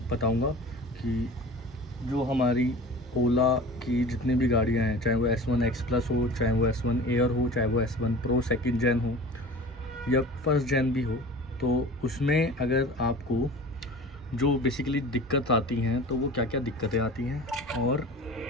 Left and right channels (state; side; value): normal; both; correlation 0.39